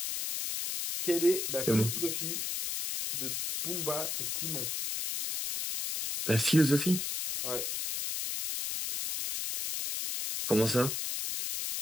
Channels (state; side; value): noise; left; hiss, 2 dB below the sound